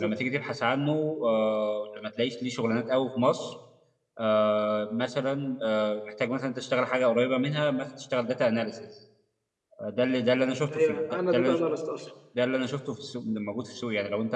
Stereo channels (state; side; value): identical; both; correlation 1.00